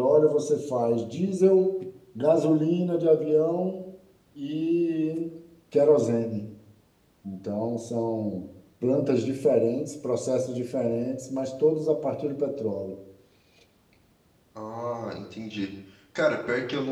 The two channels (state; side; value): identical; both; correlation 1.00